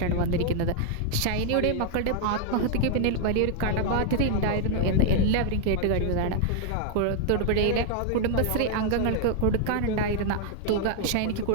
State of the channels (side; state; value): both; different; correlation 0.00